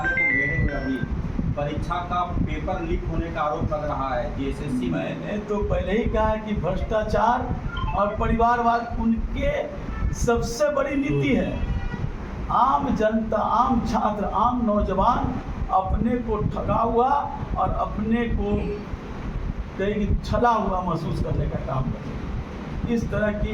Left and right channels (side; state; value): both; identical; correlation 1.00